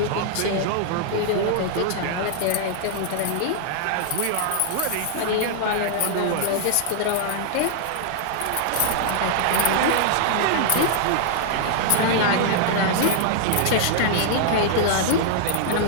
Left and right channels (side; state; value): both; different; correlation -0.01